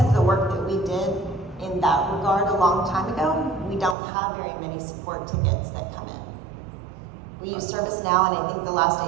the work that we did in that regard a long time ago, we don't have very many support tickets that come in. We use ServiceNow, and I think the last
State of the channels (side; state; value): left; drops out; at 4.0 s